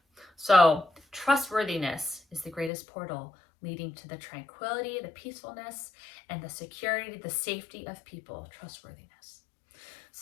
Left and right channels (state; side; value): drops out; right; at 2.7 s